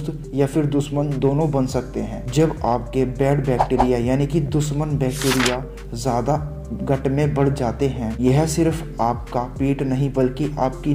या फिर दुश्मन दोनों बन सकते हैं। जब आपके बैड बैक्टीरिया यानी कि दुश्मन बैक्टीरिया ज़्यादा गट में बढ़ जाते हैं, यह सिर्फ आपका पेट नहीं बल्कि आपकी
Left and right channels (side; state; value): both; identical; correlation 1.00